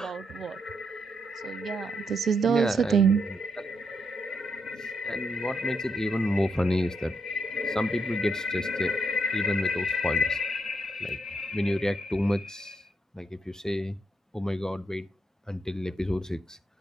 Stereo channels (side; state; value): both; normal; correlation 0.79